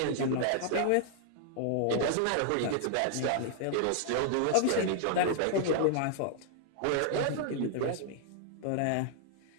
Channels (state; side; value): different; both; correlation -0.01